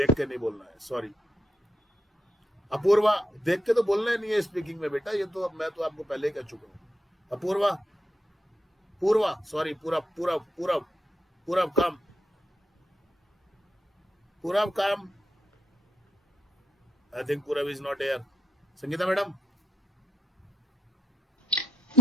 देख के नहीं बोलना है, सॉरी. अपूर्वा, देख के तो बोलना ही नहीं है स्पीकिंग में बेटा, ये तो मैं तो आपको पहले ही कह चुका हूँ. अपूर्वा, पूर्वा, सॉरी, पूरा पूरा पूरा पूरा काम, पूरा काम. आई थिंक पूरा is not here. Sangeeta madam.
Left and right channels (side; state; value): both; normal; correlation 0.82